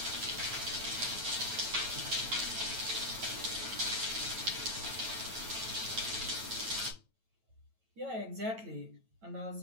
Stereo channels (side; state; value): left; late; 9.1 ms